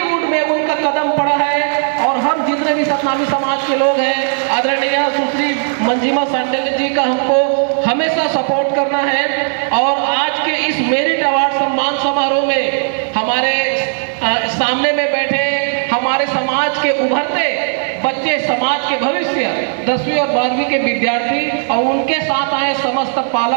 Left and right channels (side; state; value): left; silent; digital silence